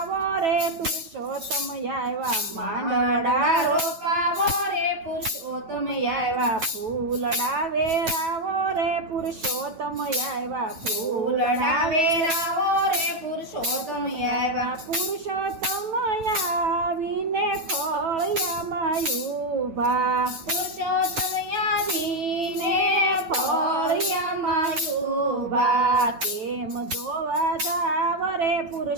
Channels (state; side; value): late; left; 9.1 ms